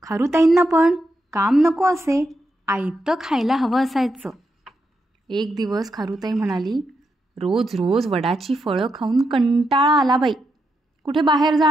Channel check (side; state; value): both; normal; correlation 0.84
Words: खारुताईंना पण काम नको असे, आयतं खायला हवं असायचं. एक दिवस खारुताई म्हणाली, रोज रोज वडाची फळं खाऊन कंटाळा आला बाई, कुठे बाहेर जा